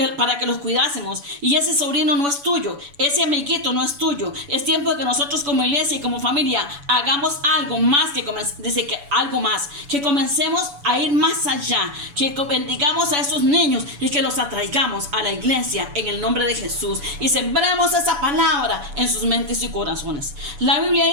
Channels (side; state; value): left; late; 7.0 ms